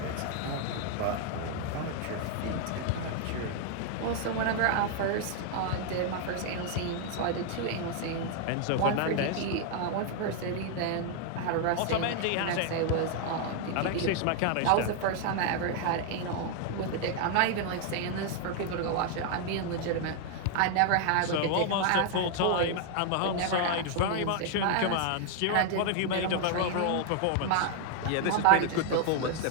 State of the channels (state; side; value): different; both; correlation 0.00